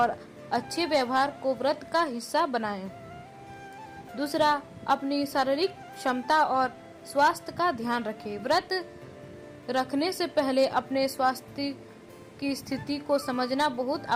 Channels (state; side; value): identical; both; correlation 1.00